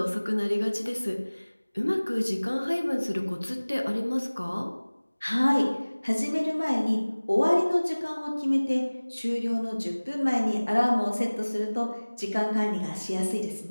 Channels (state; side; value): inverted; both; correlation -1.00